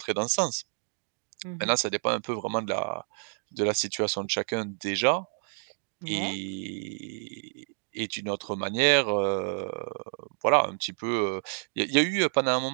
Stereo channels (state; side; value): silent; left; 58 dB below the other